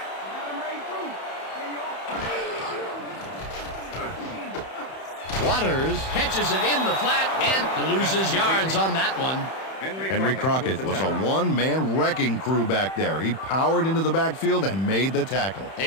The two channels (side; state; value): right; late; 31 ms